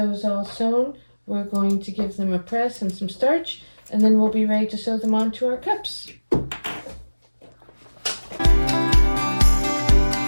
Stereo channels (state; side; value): inverted; both; correlation -1.00